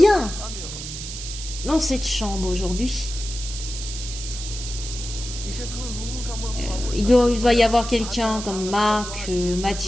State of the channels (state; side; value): noise; right; hiss, 9 dB below the sound